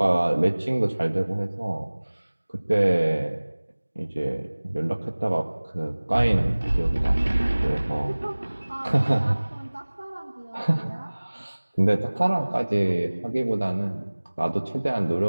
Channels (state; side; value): inverted; both; correlation -1.00